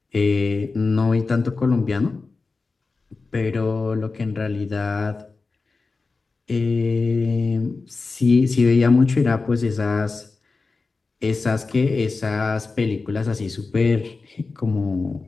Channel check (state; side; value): quieter; right; 4.0 dB